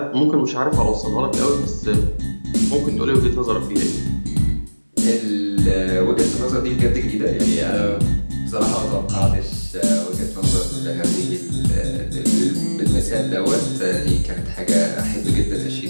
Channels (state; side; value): inverted; both; correlation -1.00